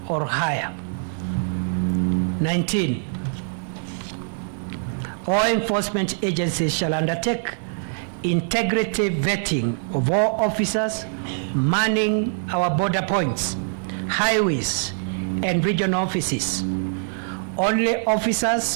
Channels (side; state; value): left; silent; digital silence